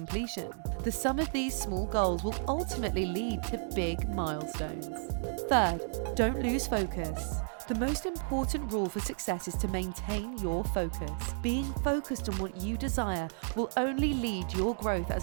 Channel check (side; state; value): left; silent; 56 dB below the other